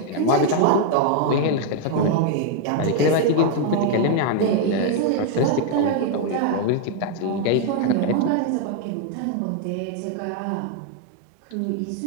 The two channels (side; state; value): both; different; correlation 0.00